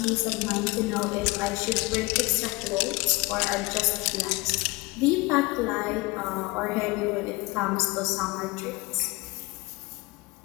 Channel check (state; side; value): quieter; right; 23.3 dB